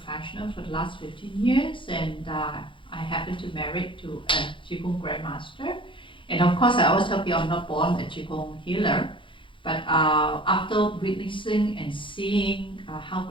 for the last 15 years, and I happened to marry to a Qi Gong grandmaster. And of course, I always tell people I'm not born a Qi Gong healer, but after witnessing and seeing how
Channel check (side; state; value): right; late; 0.25 ms